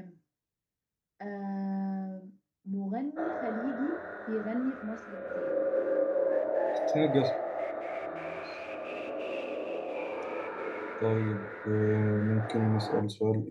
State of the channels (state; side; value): identical; both; correlation 1.00